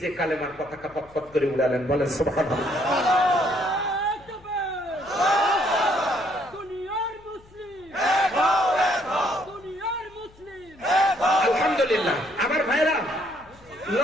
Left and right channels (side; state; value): left; noise; hum, 26 dB below the sound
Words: কালেমার পতাকা পতপত করে উড়ালেন, বলেন সুবহানাল্লাহ। আলহামদুলিল্লাহ। আমার ভাইরা